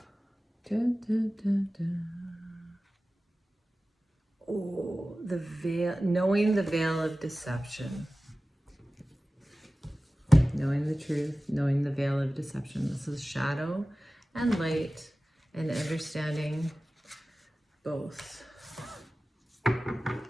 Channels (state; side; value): normal; both; correlation 0.96